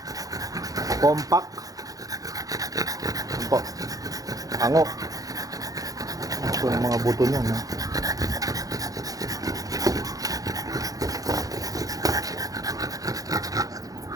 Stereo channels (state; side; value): late; left; 0.17 ms